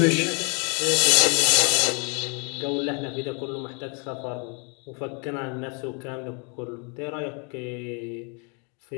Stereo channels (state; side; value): quieter; right; 35.3 dB